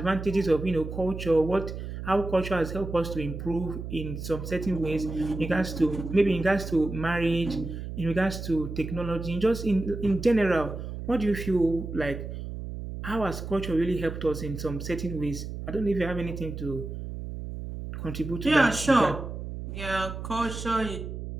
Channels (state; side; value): noise; right; hum, 7 dB below the sound